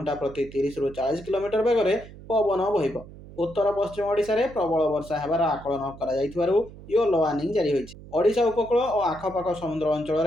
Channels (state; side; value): noise; right; hum, 17 dB below the sound